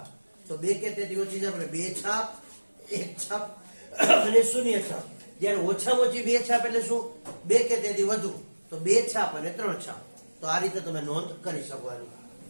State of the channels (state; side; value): inverted; both; correlation -1.00